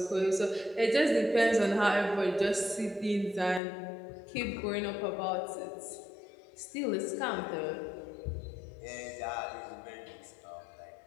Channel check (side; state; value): right; drops out; at 3.6 s